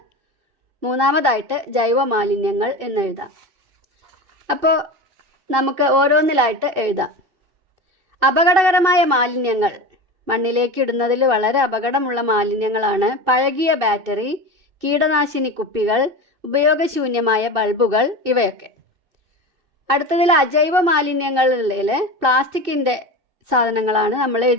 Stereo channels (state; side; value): late; left; 2.6 ms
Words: 3ാമതായിട്ട് ജൈവ മാലിന്യങ്ങൾ എന്നെഴുതാം. അപ്പോൾ നമുക്ക് ഓരോന്നിലായിട്ട് എഴുതാം. അപകടകരമായ മാലിന്യങ്ങൾ മണ്ണിലേക്ക് ഇടുന്നതിൽ വളരെ അപകടമുള്ള മാലിന്യങ്ങളാണ് പഴകിയ ബാറ്ററി, കീടനാശിനി കുപ്പികൾ, ഉപയോഗശൂന്യമായ ബൾബുകൾ, ഇവയൊക്കെ. അടുത്തതിൽ അജൈവ മാലിന്യങ്ങളിൽ പ്ലാസ്റ്റിക്കിൻ്റെ സാധനങ്ങളാണ് നമ്മൾ